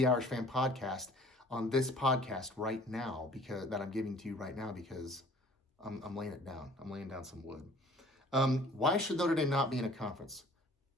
Irish Fan podcast on this podcast right now, because that I'm giving to you right now, because I'm laying it down. I'm laying down some wood. Why should Notre Dame not be in a conference?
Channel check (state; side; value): normal; both; correlation 0.52